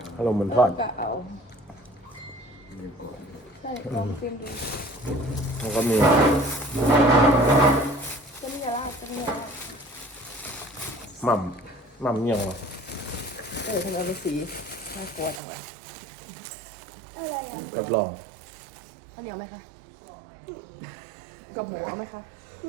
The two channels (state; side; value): drops out; left; at 15.4 s